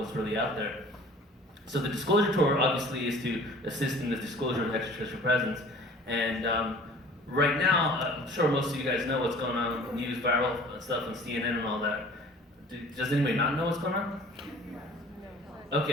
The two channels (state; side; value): normal; both; correlation 0.47